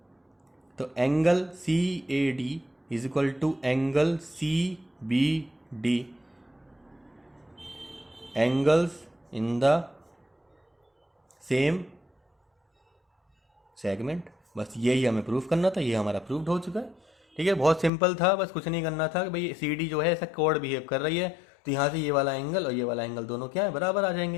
तो angle C A D is equal to angle C B D, angles in the same segment. बस यही हमें प्रूफ करना था, ये हमारा प्रूफ्ड हो चुका है, ठीक है। बहुत सिंपल था, बस कुछ नहीं करना था कि भाई सी डी जो है ऐसा कॉर्ड बिहेव कर रही है, तो यहाँ से ये वाला एंगल और ये वाला एंगल दोनों क्या है बराबर आ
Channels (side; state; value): right; drops out; at 17.9 s